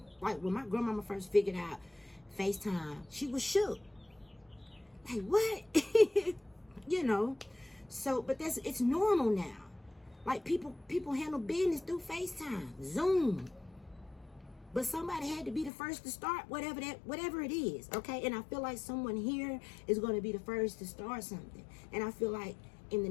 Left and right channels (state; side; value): drops out; right; at 15.7 s